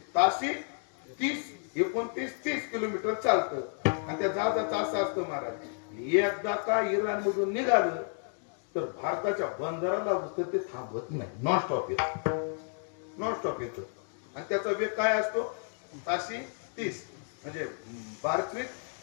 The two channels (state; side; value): silent; right; 57 dB below the other